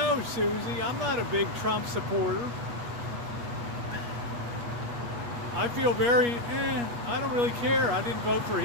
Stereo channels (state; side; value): late; left; 8.4 ms